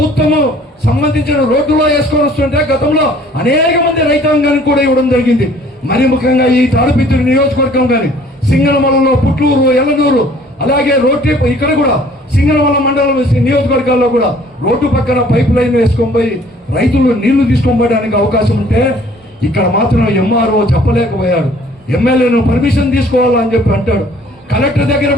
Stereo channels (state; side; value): normal; both; correlation 0.55